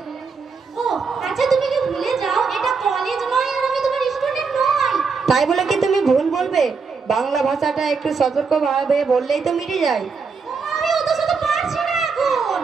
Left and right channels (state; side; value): quieter; left; 5.1 dB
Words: ও আচ্ছা, তুমি কি ভুলে যাও এটা কলেজ নয় আর আমি তোমার স্টুডেন্ট নই। তাই বলে কি তুমি ভুল বলবে? বাংলা ভাষাটা একটু সতর্কভাবে বললেই তো মিটে যায়। আমি অত শত পারছি না এখন।